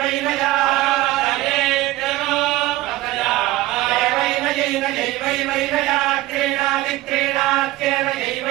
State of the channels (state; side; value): quieter; left; 17.2 dB